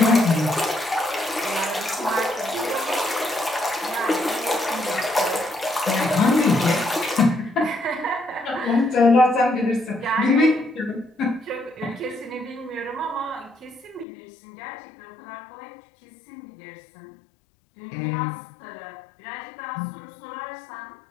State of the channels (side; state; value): right; drops out; at 14.1 s